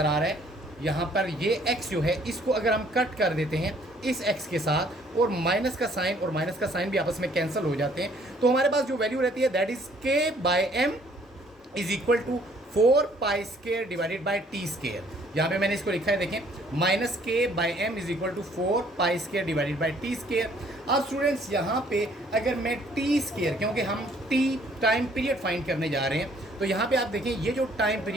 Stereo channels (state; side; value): normal; both; correlation 0.61